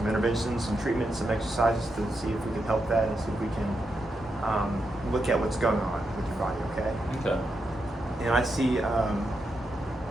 interventions, some treatments, some exercises to see if we can help that and see if we can look at what's going on with your body, okay? Okay. And I see,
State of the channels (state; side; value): normal; both; correlation 0.84